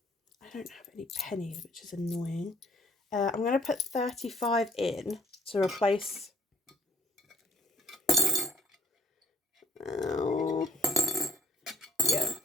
I don't have any pennies, which is annoying. I'm going to put 35 in to replace,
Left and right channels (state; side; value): normal; both; correlation 0.59